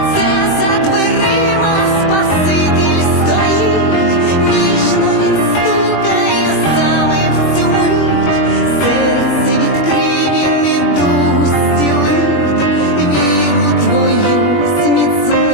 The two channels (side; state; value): right; late; 21 ms